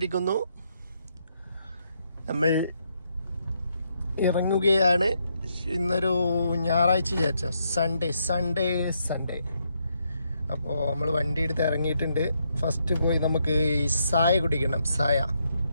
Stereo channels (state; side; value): inverted; both; correlation -0.77